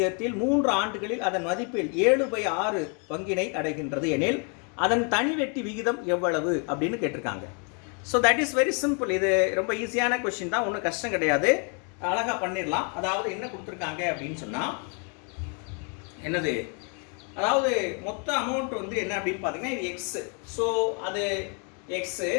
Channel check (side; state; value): right; quieter; 38.5 dB